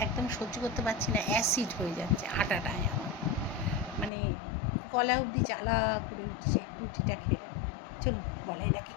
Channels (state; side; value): drops out; right; at 4.1 s